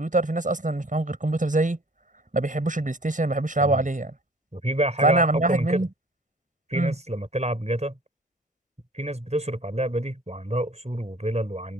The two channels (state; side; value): normal; both; correlation 0.50